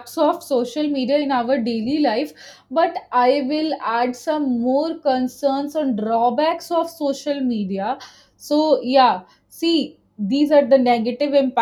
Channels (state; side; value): identical; both; correlation 1.00